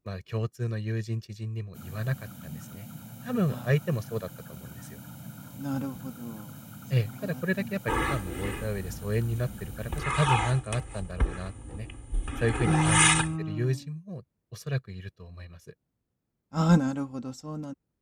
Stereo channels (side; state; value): both; identical; correlation 1.00